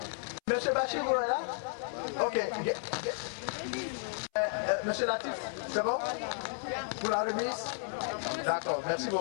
Monsieur Bachir, vous êtes là? Ok. Monsieur Latif, c'est bon? Pour la remise? D'accord, merci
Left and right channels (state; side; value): silent; right; 56 dB below the other